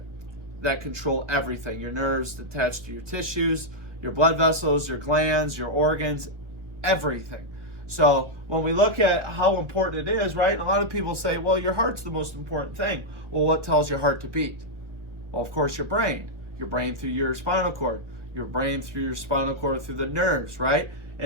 control everything. Your nerves attached to your tissues, your blood vessels, your glands, your organs, everything. So when we look at how important it is, right? And a lot of people say, well, your heart's the most important thing. Well, what tells your heart to beat? Well, of course, your brain. Your brain through your spinal cord. Your brain through your spinal cord through the nerves, right?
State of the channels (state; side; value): late; left; 1.4 ms